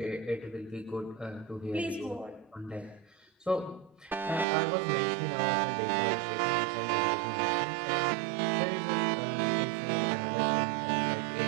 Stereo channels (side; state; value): left; drops out; at 4.5 s